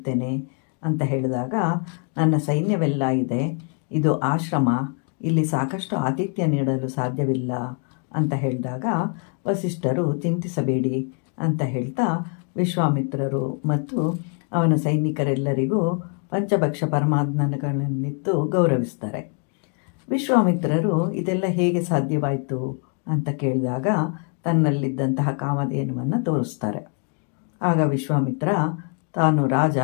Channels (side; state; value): right; quieter; 39.6 dB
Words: ಅಂತ ಹೇಳಿದಾಗ, ನನ್ನ ಸೈನ್ಯವೆಲ್ಲ ಇದೆ, ಇದು ಆಶ್ರಮ, ಇಲ್ಲಿ ಸಾಕಷ್ಟು ಆತಿಥ್ಯ ನೀಡಲು ಸಾಧ್ಯವಿಲ್ಲ ಅಂತ ಹೇಳಿದಾಗ, ವಸಿಷ್ಠರು ಚಿಂತಿಸಬೇಡಿ ಅಂತ ಹೇಳ್ತಾ ವಿಶ್ವಾಮಿತ್ರರು ಮತ್ತು ಅವನ ಸೈನಿಕರೆಲ್ಲರಿಗೂ ಪಂಚಭಕ್ಷ ಪರಮಾನ್ನಗಳನ್ನಿತ್ತು ಗೌರವಿಸ್ತಾರೆ. ವಿಶ್ವಾಮಿತ್ರರು ಇದೆಲ್ಲ ಹೇಗೆ ಸಾಧ್ಯವಾಯಿತು ಅಂತ ಕೇಳಿದಾಗ ತನ್ನಲ್ಲಿದ್ದಂತಹ ಕಾಮಧೇನುವನ್ನು ತೋರಿಸ್ತಾರೆ. ಆಗ ವಿಶ್ವಾಮಿತ್ರ ತಾನು ರಾಜ,